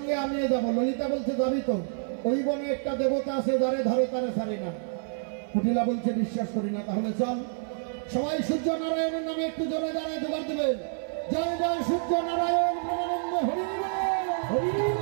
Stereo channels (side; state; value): left; silent; 57 dB below the other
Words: আমিও যাবো। ললিতা বলছে যাবি তো? ওই বনে একটা দেবতা আছে যারে ধরে তারে ছাড়ি না। কুটিলা বলছে বিশ্বাস করি না। তাহলে চল। সবাই সূর্য নারায়ণের নামে একটু জোরে দাঁড়ায় জোগাড় দেবেন। জয় জয় সূর্য নারায়ণ ব্রহ্মানন্দ হরি হরি